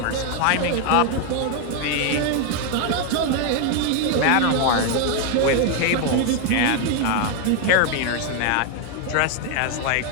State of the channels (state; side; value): different; both; correlation 0.01